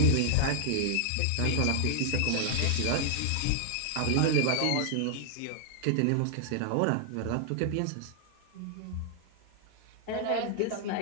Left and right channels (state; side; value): different; both; correlation 0.00